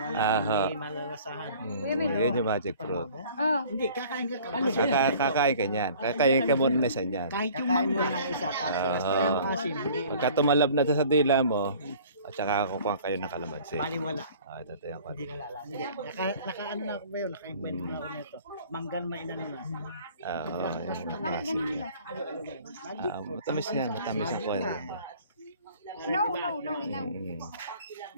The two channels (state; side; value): inverted; both; correlation -0.49